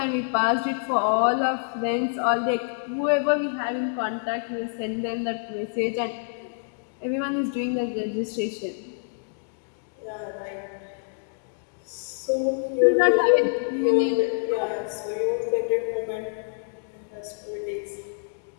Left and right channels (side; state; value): right; silent; digital silence